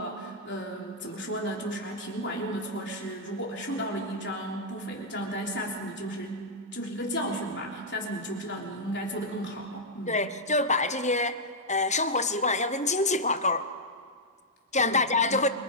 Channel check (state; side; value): normal; both; correlation -0.06